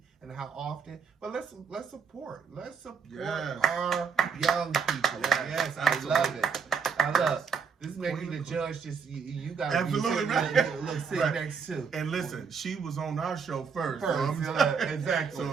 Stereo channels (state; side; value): quieter; left; 6.0 dB